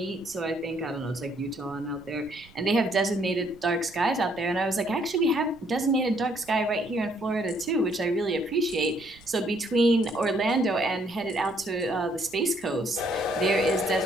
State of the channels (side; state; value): right; noise; rumble, 25 dB below the sound